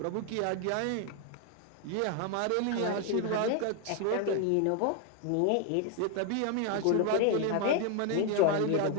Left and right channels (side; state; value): both; different; correlation 0.01